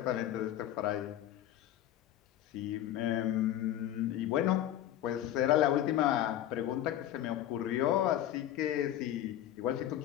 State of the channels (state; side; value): quieter; right; 12.2 dB